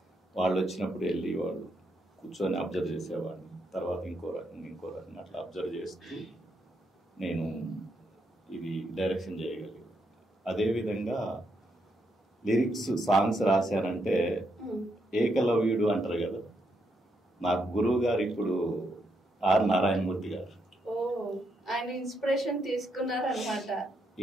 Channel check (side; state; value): both; normal; correlation 0.79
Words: వాళ్ళు వచ్చినప్పుడు వెళ్ళి వాళ్ళు కూర్చొని అబ్జర్వ్ చేసేవాడిని. తర్వాత ఇంకో రకంగా అట్లా అబ్జర్వ్ చేస్తూ నేను ఇది డైరెక్షన్ చేయగలిగాను. అదేవిధంగా లిరిక్స్ సాంగ్స్ రాశానంటే ఏకలవ్యుడు అంటారు కదా, నాకు గురువు గారు ఇప్పుడు ఆర్ నారాయణమూర్తి గారు. ఆయన ఇన్స్పిరేషన్ తీసుకున్నారన్నమాట.